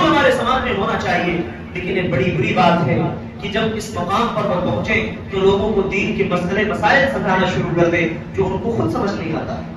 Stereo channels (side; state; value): both; identical; correlation 1.00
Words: ہمارے سماج میں ہونا چاہیے. لیکن یہ بڑی بری بات ہے کہ جب اس مقام پر وہ پہنچے تو لوگوں کو دین کے مسئلے مسائل سمجھانا شروع کر دے جو ان کو خود سمجھ نہیں آتا.